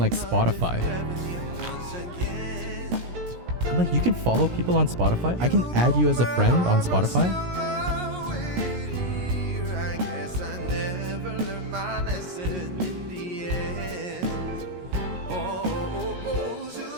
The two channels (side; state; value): left; late; 17 ms